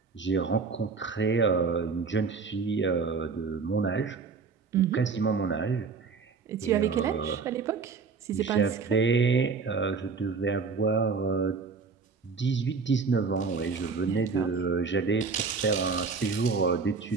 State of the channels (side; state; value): left; quieter; 4.9 dB